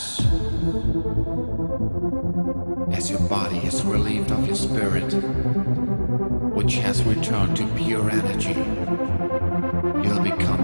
As your body is relieved of your spirit, which has returned to pure energy, you'll become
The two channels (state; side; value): inverted; both; correlation -1.00